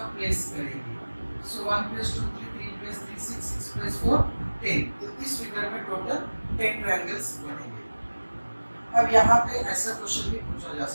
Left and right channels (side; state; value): both; inverted; correlation -1.00